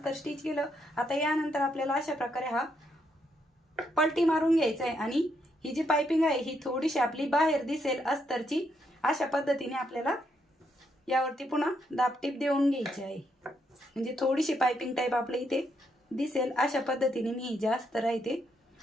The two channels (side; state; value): both; normal; correlation 0.77